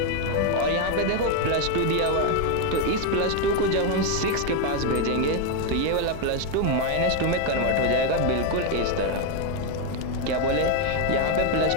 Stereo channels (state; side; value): different; both; correlation 0.02